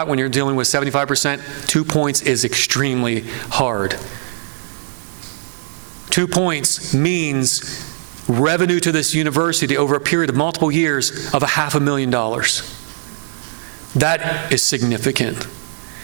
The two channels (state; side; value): silent; left; 57 dB below the other